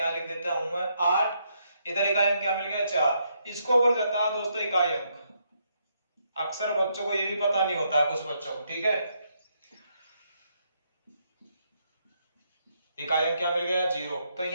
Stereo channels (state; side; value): inverted; both; correlation -0.76